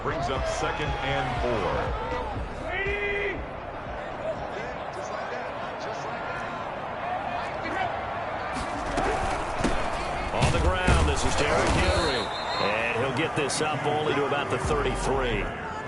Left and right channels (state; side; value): identical; both; correlation 1.00